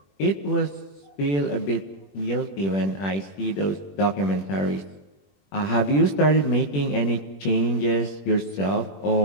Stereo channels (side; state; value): right; late; 21 ms